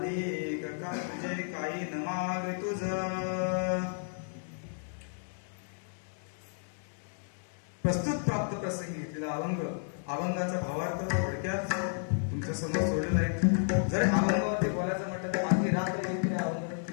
एक का तुझे काही न माग तुझ. प्रस्तुत प्राप्त प्रसंगी घेतलेला अभंगाचा भावार्थ थोडक्यात तुमच्या समोर सोडलेला आहे. जर अभंगावरती बोलायचं म्हटलं तर आणखी रात्र येते अभंग,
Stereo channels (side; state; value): right; silent; digital silence